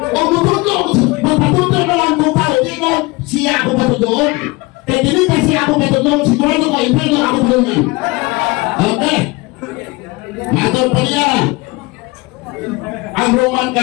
mutudlo ako, magpatudlo na lang ko pa, hindi ko siya ako patudloon. Kaya dili kasi ako patudloon, sigurado ko, impero ako patudloon. Okay. Matol pa niya. Ang Roman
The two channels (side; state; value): right; quieter; 23.5 dB